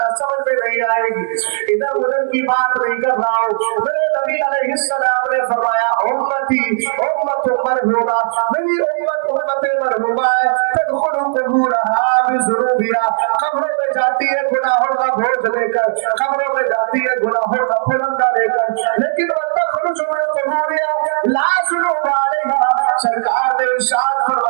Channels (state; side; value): silent; left; 64 dB below the other